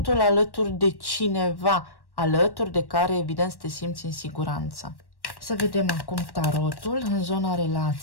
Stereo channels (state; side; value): late; right; 1.1 ms